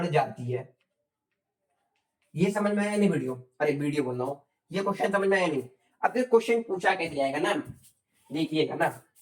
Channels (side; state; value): both; identical; correlation 1.00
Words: जाती है। ये समझ में आया नहीं वीडियो, अरे वीडियो बोल रहा हूँ, ये क्वेश्चन समझ में आया नहीं। अब क्वेश्चन पूछा कैसे जाएगा ना, देखिएगा ना,